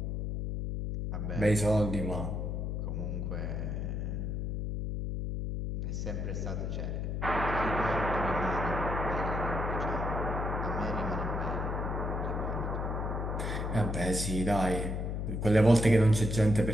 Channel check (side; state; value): left; noise; hum, 2 dB below the sound